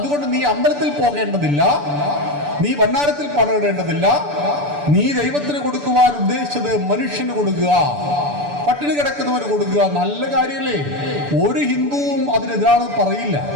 നീ അമ്പലത്തിൽ പോകേണ്ടതില്ല, നീ ഭണ്ഡാരത്തിൽ പണം ഇടേണ്ടതില്ല. നീ ദൈവത്തിന് കൊടുക്കുവാൻ ഉദ്ദേശിച്ചത് മനുഷ്യന് കൊടുക്കുക, പട്ടിണി കിടക്കുന്നവന് കൊടുക്കുക. നല്ല കാര്യമല്ലേ? ഒരു ഹിന്ദുവും അതിനെതിരാണെന്ന് പറയില്ല.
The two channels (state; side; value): late; left; 6.9 ms